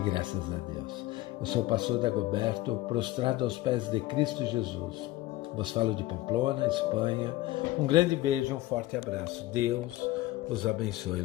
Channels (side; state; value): right; quieter; 16.9 dB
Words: a Deus. Eu sou o pastor Dagoberto, prostrado aos pés de Cristo Jesus. Vos falo de Pamplona, Espanha. Um grande beijo, um forte abraço. Deus os abençoe.